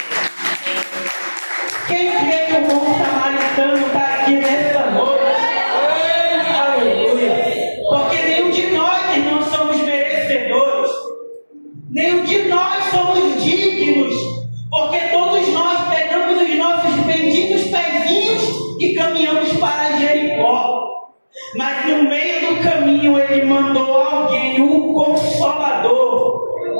Quem crê que o bom samaritano está aqui nessa noite? Aleluia! Porque nenhum de nós não somos merecedores, nenhum de nós somos dignos, porque todos nós pegamos os nossos benditos pezinhos e caminhamos para Jericó. Mas no meio do caminho ele mandou alguém, um Consolador.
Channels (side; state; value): both; inverted; correlation -1.00